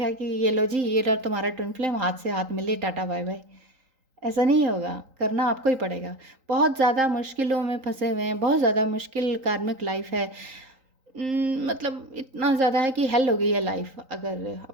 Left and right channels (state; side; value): late; left; 3.8 ms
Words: कि ये लो जी, ये रहा तुम्हारा ट्विन फ्लेम, हाथ से हाथ मिले, टाटा बाय बाय। ऐसा नहीं होगा, करना आपको ही पड़ेगा। बहुत ज़्यादा मुश्किलों में फंसे हुए हैं, बहुत ज़्यादा मुश्किल कार्मिक लाइफ है। मतलब इतना ज़्यादा है कि हेल हो गई है लाइफ अगर